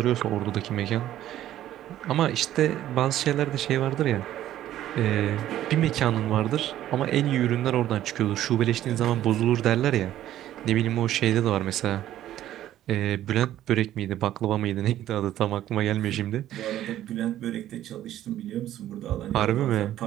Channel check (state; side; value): quieter; left; 12.7 dB